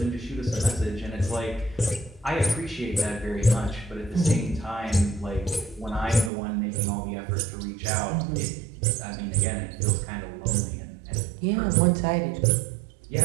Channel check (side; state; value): left; drops out; at 6.3 s